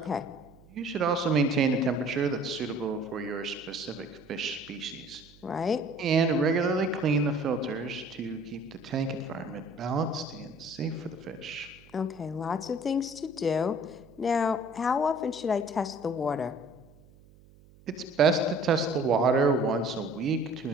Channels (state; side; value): noise; right; hum, 26 dB below the sound